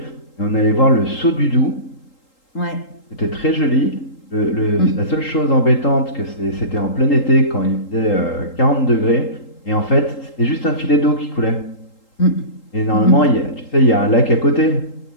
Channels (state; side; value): late; right; 3.8 ms